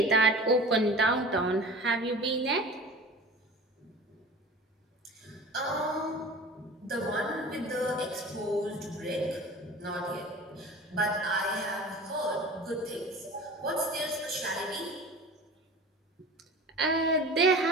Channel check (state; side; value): normal; both; correlation 0.39